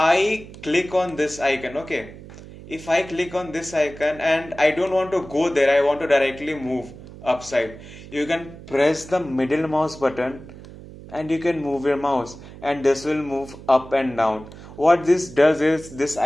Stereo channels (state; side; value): noise; right; hum, 16 dB below the sound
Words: click on this icon, okay, if I click on this icon and I don't want to go there, I want to directly move upside, you can press the middle mouse button and you can move your mouse, and this will move up and down. What this does is this